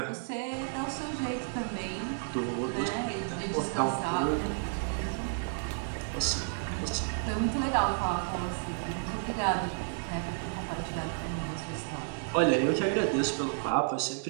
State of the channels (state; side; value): silent; left; digital silence